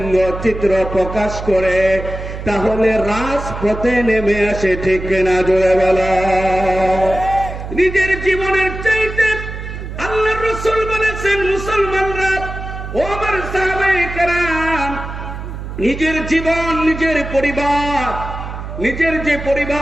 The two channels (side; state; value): right; noise; hum, 8 dB below the sound